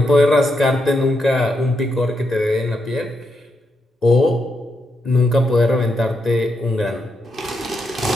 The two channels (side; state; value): both; normal; correlation 0.82